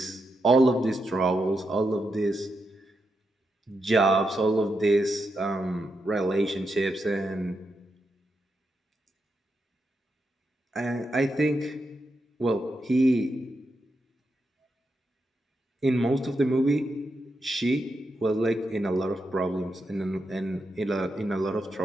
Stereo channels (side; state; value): both; normal; correlation 0.85